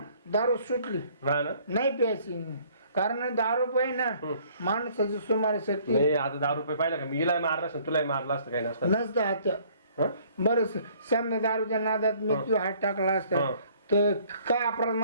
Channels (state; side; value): inverted; both; correlation -0.59